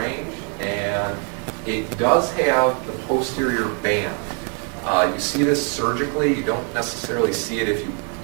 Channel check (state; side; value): quieter; left; 38.5 dB